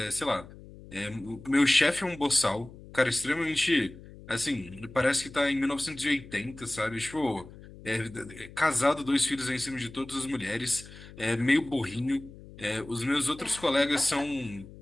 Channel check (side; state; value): left; noise; hum, 18 dB below the sound